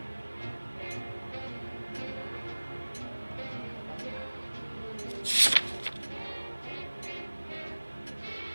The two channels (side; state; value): both; inverted; correlation -1.00